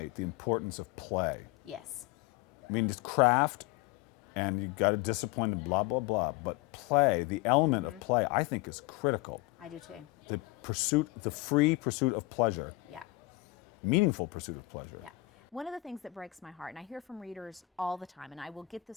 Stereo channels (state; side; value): quieter; right; 18.8 dB